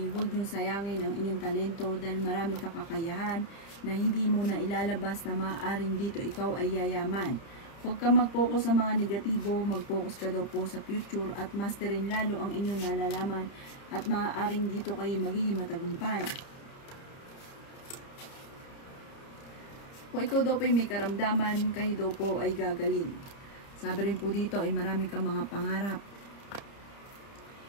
huwag niyong sayangin ang inyong talento dahil marami kang kakayahan na hindi mo na ilalabas na maaaring dito ikaw ay yayaman. Huwag ka mag-focus sa mga negatibo, mag-focus ka daw po sa future at masterin lalo ang inyong nalalaman at maaaring dito kayo magiging matagumpay. Kung ikaw daw po ay may karamdaman, kayo daw po ay gagaling. Sabi rin po dito ay marami kang mga pangarap.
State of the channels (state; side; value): late; right; 30 ms